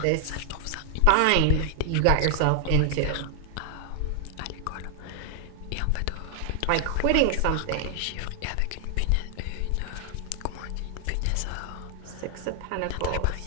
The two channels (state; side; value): different; both; correlation 0.00